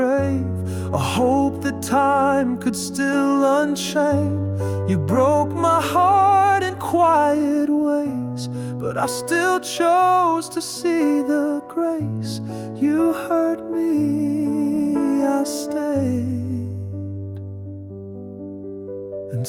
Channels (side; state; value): both; identical; correlation 1.00